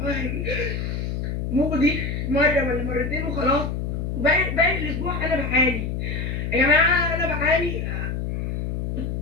مودي مره ولا مرتين وخلاص، باقي الاسبوع انا بعاني يا جماعه، انا بعاني.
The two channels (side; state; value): left; noise; hum, 2 dB below the sound